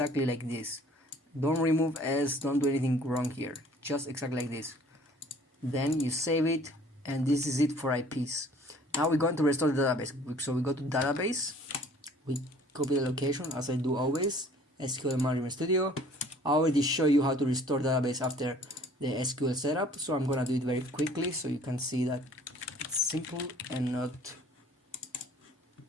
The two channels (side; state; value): both; normal; correlation 0.53